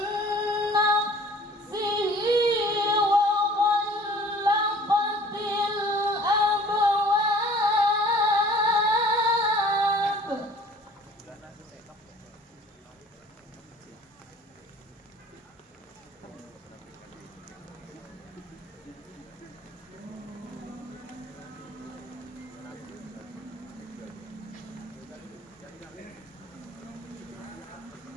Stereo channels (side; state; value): both; normal; correlation 0.50